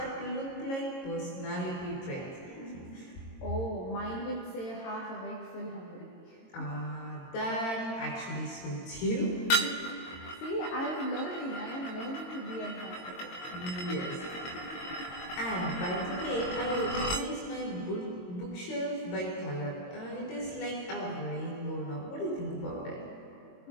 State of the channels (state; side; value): late; right; 22 ms